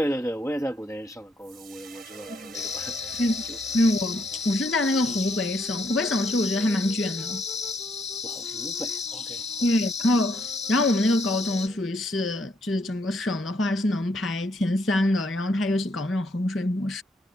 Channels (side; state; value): both; normal; correlation 0.73